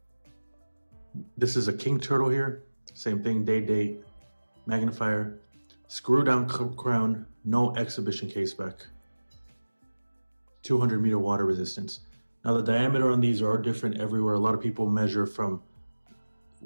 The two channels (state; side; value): inverted; both; correlation -1.00